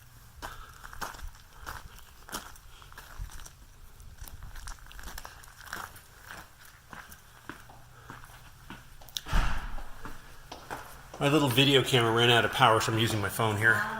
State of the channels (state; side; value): identical; both; correlation 1.00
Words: My little video camera ran out of power, so I'm using my phone here.